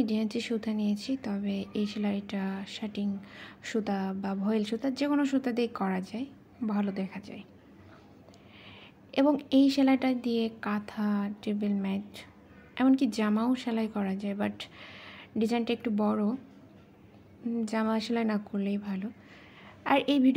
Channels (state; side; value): identical; both; correlation 1.00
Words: ডিএনসি সুতা নিয়েছি, তবে এই সেলাইটা শাটিং সুতা বা ভয়েল সুতা যে কোনো সুতা দিয়ে করা যায়, ভালো দেখা যায়। এবং এই সেলাইটা দিয়ে কাঁথা, টেবিল ম্যাট, এমনকি জামাও সেলাই করা যায়, বাট ডিজাইনটা একটু বড়, জামা সেলাই না করলেই ভালো। আর এই